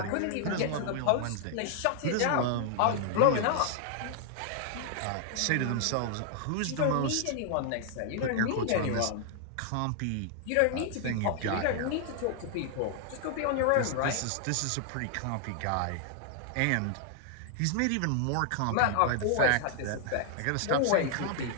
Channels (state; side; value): different; both; correlation 0.00